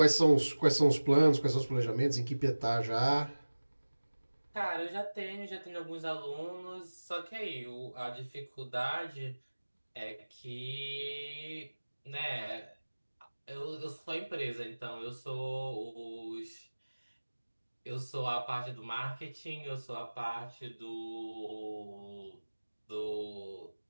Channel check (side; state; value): both; inverted; correlation -1.00